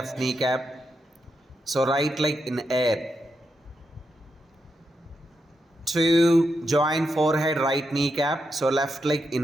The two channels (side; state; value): both; normal; correlation 0.84